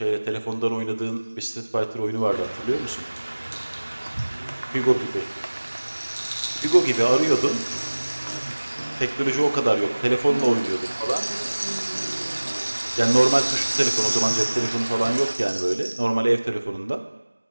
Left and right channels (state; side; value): inverted; both; correlation -1.00